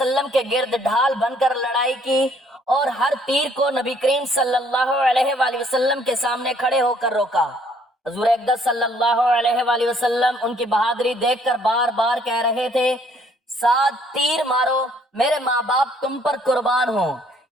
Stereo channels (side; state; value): both; normal; correlation 0.63